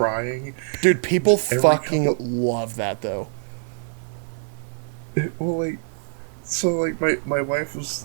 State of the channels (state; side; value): silent; left; 56 dB below the other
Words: Dude, people Every fucking couple- love that though. Well, like, so like my wife was